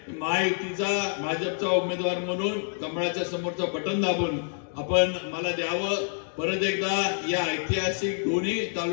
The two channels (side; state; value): right; silent; 60 dB below the other